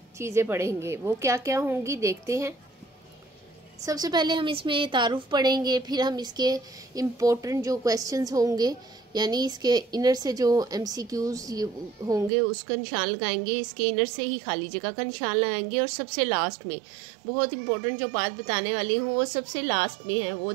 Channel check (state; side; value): drops out; left; at 12.3 s